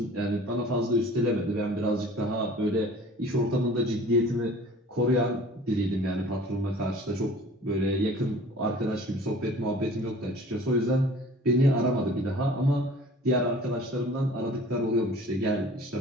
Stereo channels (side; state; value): both; normal; correlation 0.46